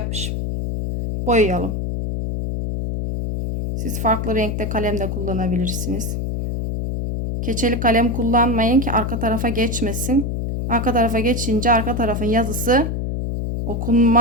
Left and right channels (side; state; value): left; noise; hum, 2 dB below the sound